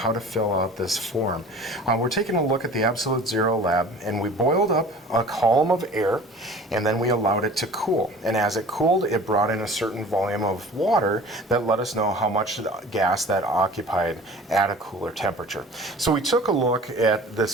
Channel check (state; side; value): normal; both; correlation 0.43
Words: to fill out this form. We're taking a look at the absolute zero lab, and we boiled up a column of air, and then we allowed it to cool. And as it cooled, it brought in a certain volume of water that let us know how much gas that occupied at a cooler temperature. So we took a look at